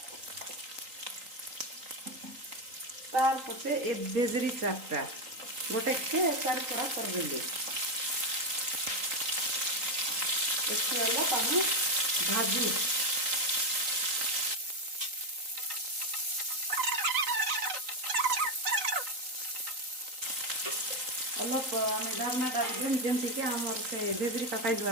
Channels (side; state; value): left; late; 3.9 ms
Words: तार पचे ए बेजरी चारटा गोटे के चार पड़ा कर देली इसके वाला पानी भाजी अलग आम डालना डाल देम जमती कि आमर से बेजरी पकाई